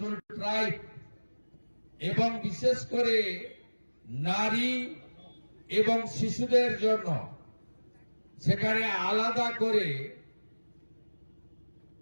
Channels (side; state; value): both; inverted; correlation -1.00